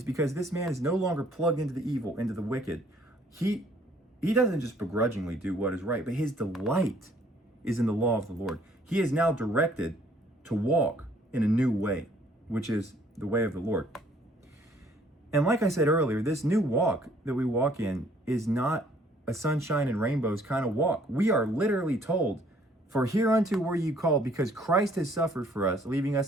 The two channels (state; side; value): normal; both; correlation 0.61